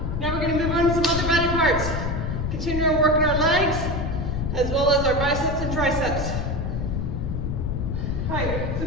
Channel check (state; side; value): noise; left; rumble, 2 dB below the sound